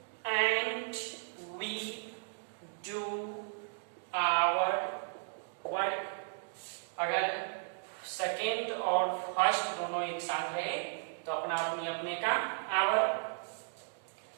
and we do our work. अगर सेकेंड और फर्स्ट दोनों एक साथ रहे तो अपना अपनी अपने का आवर।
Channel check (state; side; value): silent; left; digital silence